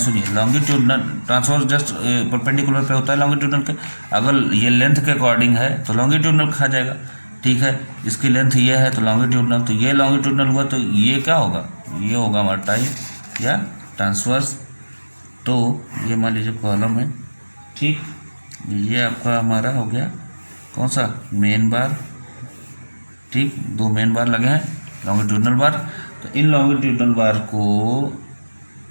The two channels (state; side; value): inverted; both; correlation -1.00